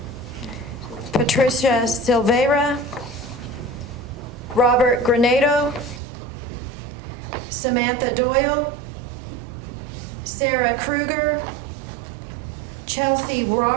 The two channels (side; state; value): left; drops out; at 6.0 s